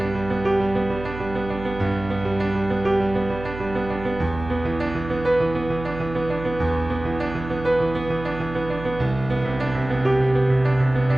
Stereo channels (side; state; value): right; noise; hum, 11 dB below the sound